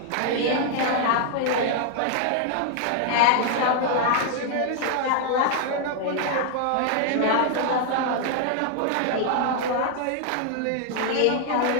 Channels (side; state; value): both; different; correlation -0.01